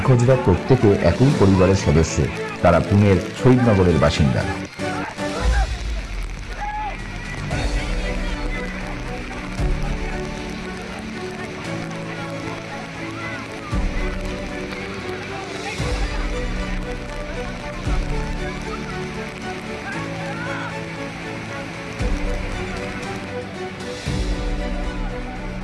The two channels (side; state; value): both; identical; correlation 1.00